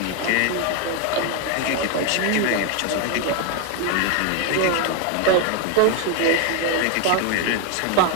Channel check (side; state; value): both; different; correlation 0.01